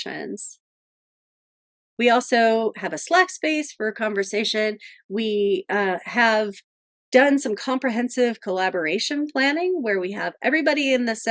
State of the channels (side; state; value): both; identical; correlation 1.00